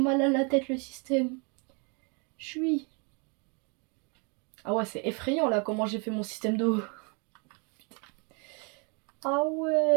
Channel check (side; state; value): left; quieter; 34.2 dB